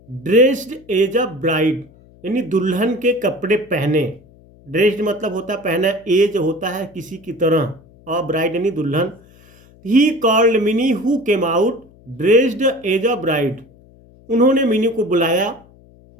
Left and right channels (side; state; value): left; noise; hum, 26 dB below the sound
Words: ड्रेस्ड एज अ ब्राइड यानी दुल्हन के कपड़े पहने, ड्रेस्ड मतलब होता है पहना, एज होता है किसी की तरह, और ब्राइड यानी दुल्हन। He called Mini who came out dressed as a bride, उन्होंने मिनी को बुलाया